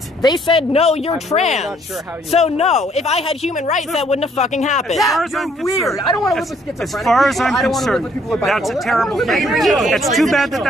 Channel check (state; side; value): normal; both; correlation 0.65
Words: They said, no, you're trans. Really so no, if I had human rights, that wouldn't have fucking happened. Yeah, you're weird. I don't want to live with schizophrenic As far as I'm concerned, that's a terrible thing. It's too bad that